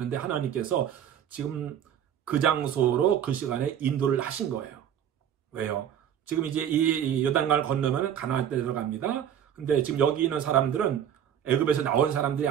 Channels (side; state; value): left; quieter; 9.5 dB